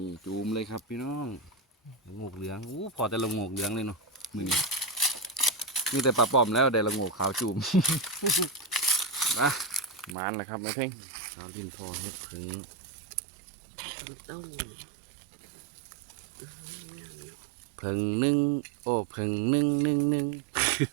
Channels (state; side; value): drops out; left; at 10.2 s